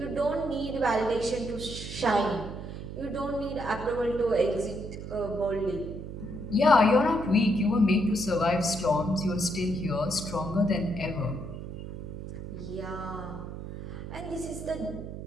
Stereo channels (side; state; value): right; noise; hum, 9 dB below the sound